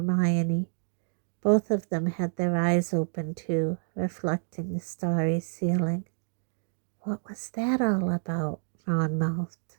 Both of them had their eyes open too, reflecting the starry ceiling. What was that all about? Ron mouthed.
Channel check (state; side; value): silent; left; digital silence